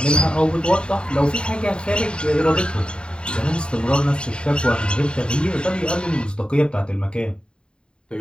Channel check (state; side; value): late; right; 0.052 ms